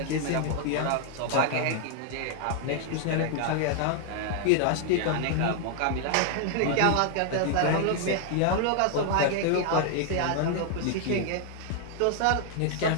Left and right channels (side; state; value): both; different; correlation 0.00